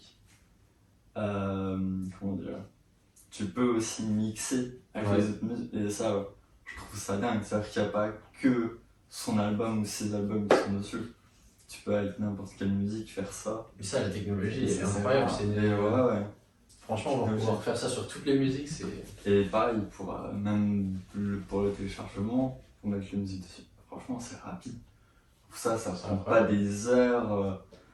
comment dire, tu peux aussi mixer avec les autres musiques. Et ça, je trouve ça dingue. C'est-à-dire qu'il n'y a pas que son album ou ses albums qui sont dessus. Tu peux avec n'importe quelle musique faire ça. Mais ça, la technologie, c'est incroyable. Franchement, on va pouvoir faire ça sur toutes les musiques. Et pareil, même pour le téléchargement, pour mettre les musiques dessus. Franchement, c'est rapide. Ça prend pas des heures.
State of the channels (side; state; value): both; identical; correlation 1.00